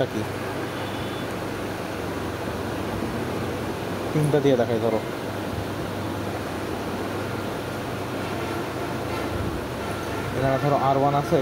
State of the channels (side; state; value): both; identical; correlation 1.00